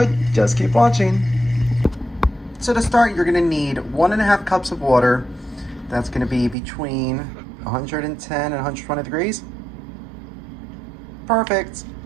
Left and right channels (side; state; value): left; drops out; at 6.6 s